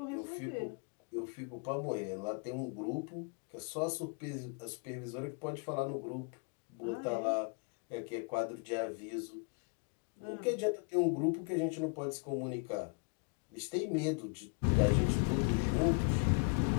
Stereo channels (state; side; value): quieter; right; 36.2 dB